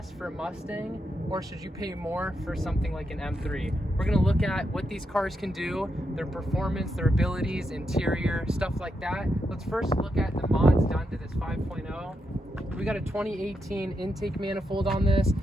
for a Mustang, or should you pay more for something like an M3? We're gonna look at what these cars can do, their performance, their abilities, interior, stuff like that. Let's first look at the mods done to this 5.0. We got a 2018 intake manifold on this.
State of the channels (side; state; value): both; normal; correlation 0.83